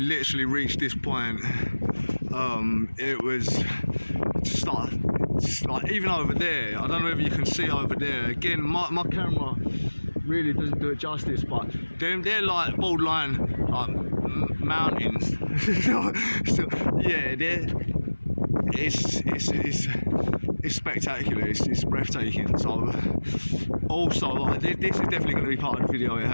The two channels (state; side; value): inverted; both; correlation -1.00